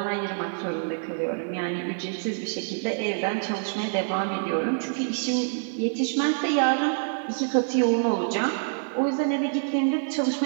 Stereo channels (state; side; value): silent; left; digital silence